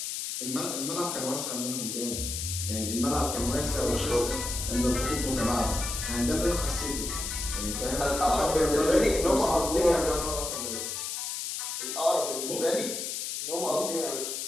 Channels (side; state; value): left; noise; hiss, 4 dB below the sound